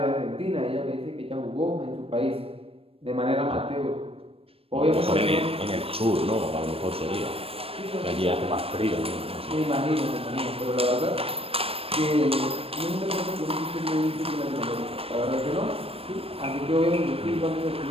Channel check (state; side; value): late; left; 0.28 ms